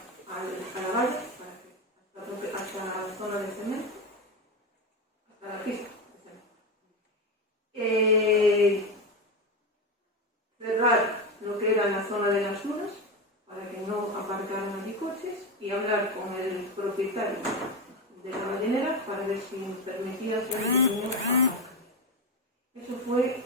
a la valla, hasta la zona de cemento, hasta la pista de cemento. Cerrar lo que era en la zona de las dunas, para que no aparcaran allí coches, y hablar con el propietario de la ballenera para ver si permitía hacer un pequeño aparcamiento. Eso fue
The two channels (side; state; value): both; normal; correlation 0.16